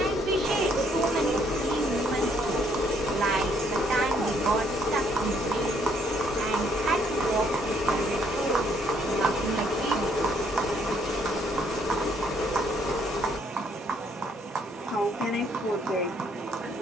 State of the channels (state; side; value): normal; both; correlation 0.68